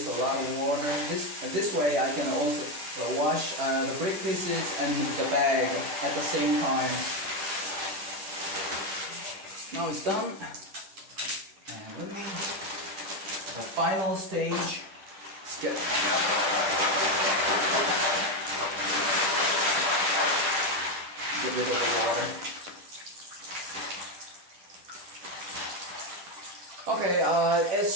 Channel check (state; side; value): late; left; 10 ms